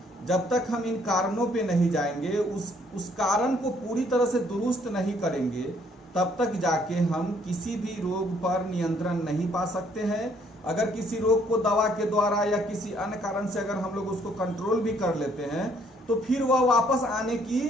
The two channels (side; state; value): both; normal; correlation 0.65